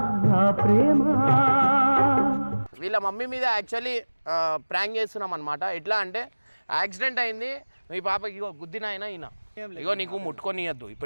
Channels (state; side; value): inverted; both; correlation -1.00